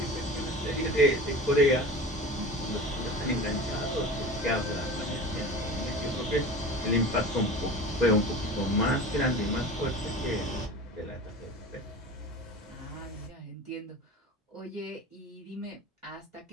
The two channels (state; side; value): normal; both; correlation 0.35